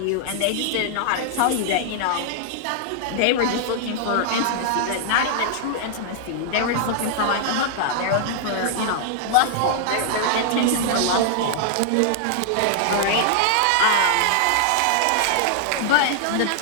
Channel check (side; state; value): both; different; correlation 0.00